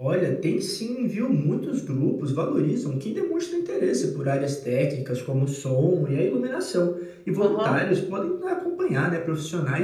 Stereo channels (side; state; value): both; identical; correlation 1.00